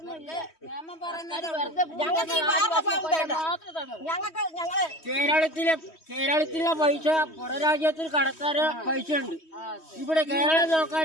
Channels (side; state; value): right; late; 3.1 ms